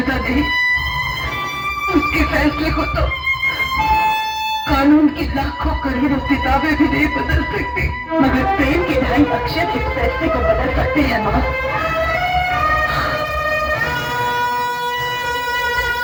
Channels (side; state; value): both; identical; correlation 1.00